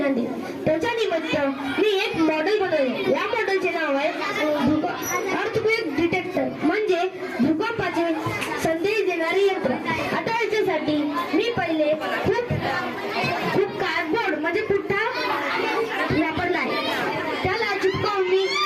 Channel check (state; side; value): identical; both; correlation 1.00